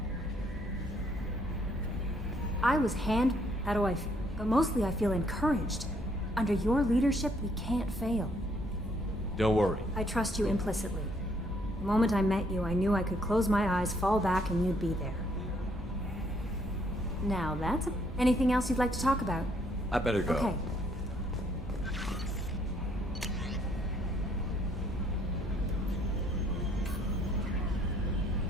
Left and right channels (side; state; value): both; normal; correlation 0.68